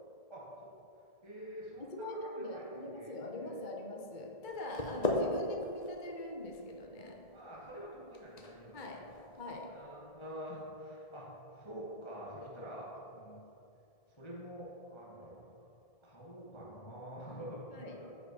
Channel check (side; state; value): right; late; 1.7 ms